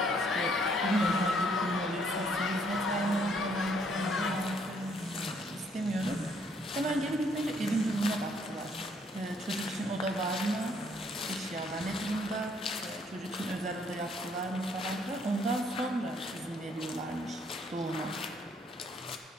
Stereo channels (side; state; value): both; normal; correlation 0.66